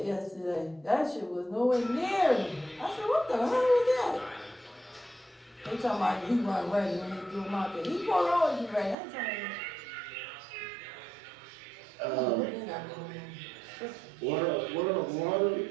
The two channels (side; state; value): left; drops out; at 9.0 s